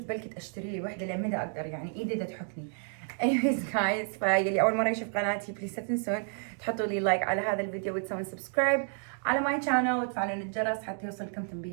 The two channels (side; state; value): left; silent; 56 dB below the other